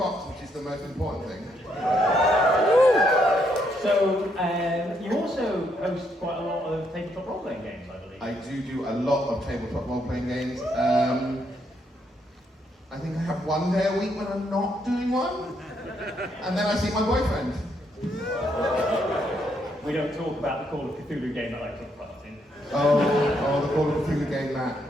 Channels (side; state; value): both; normal; correlation 0.75